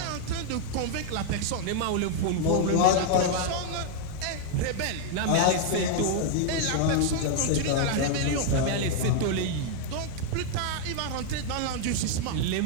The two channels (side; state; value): both; different; correlation 0.00